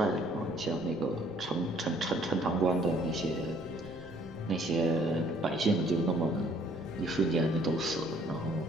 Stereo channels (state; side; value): noise; right; rumble, 22 dB below the sound